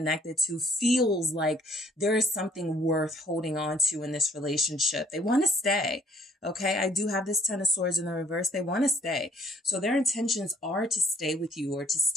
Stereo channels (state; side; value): normal; both; correlation 0.63